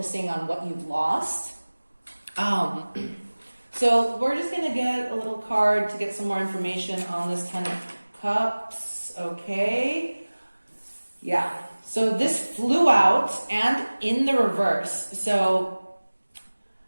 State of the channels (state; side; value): inverted; both; correlation -1.00